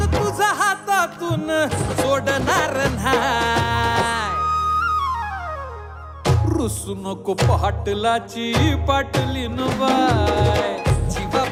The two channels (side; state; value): both; identical; correlation 1.00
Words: तुझा हातातून सोडणार नाही रुसू नको पाटलाची पाटलीन बाय जीवा